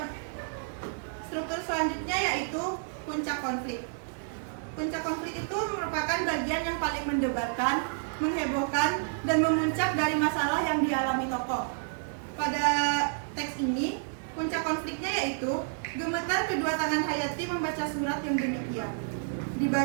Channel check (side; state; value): left; silent; digital silence